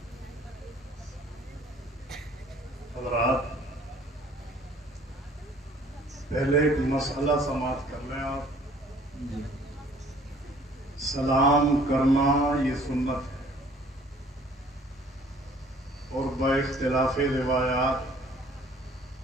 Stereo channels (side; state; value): both; normal; correlation 0.55